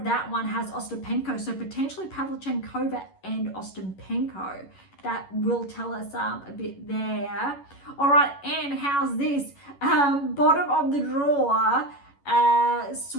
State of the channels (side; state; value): right; late; 11 ms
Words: that one has Ostapenko, so potentially Pavlyuchenkova and Ostapenko. That will tell us a bit there. All right, and how's this? Bottom of the draw,